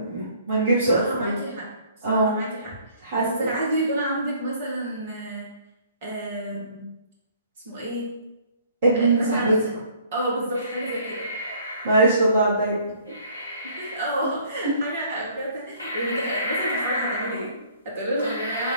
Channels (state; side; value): inverted; both; correlation -0.58